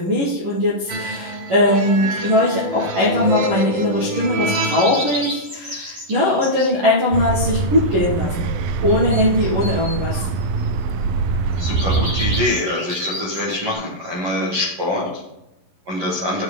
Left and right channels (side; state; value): left; late; 11 ms